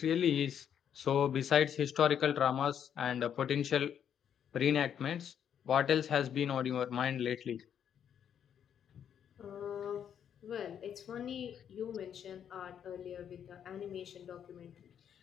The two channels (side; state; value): right; quieter; 8.8 dB